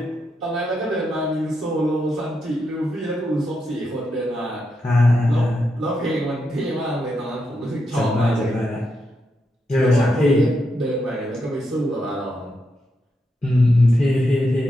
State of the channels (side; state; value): both; normal; correlation 0.83